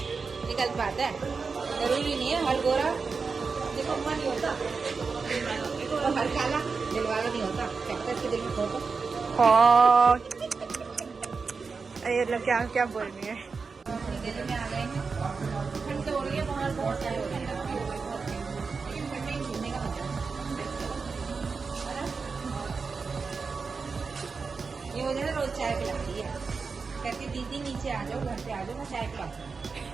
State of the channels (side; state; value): left; quieter; 4.8 dB